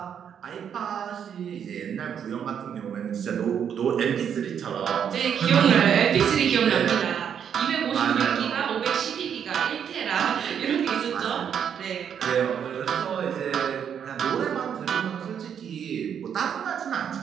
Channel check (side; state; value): left; quieter; 8.2 dB